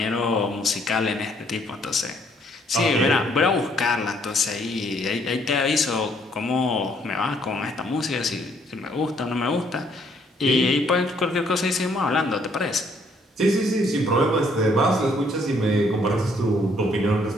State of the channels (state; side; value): normal; both; correlation 0.66